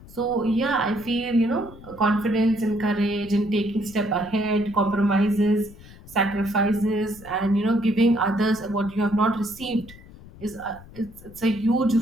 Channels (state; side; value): noise; left; rumble, 19 dB below the sound